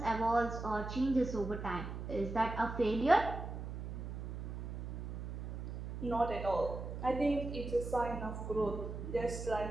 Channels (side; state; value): right; noise; hum, 6 dB below the sound